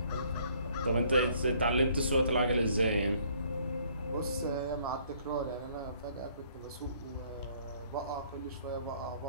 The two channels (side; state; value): both; inverted; correlation -0.62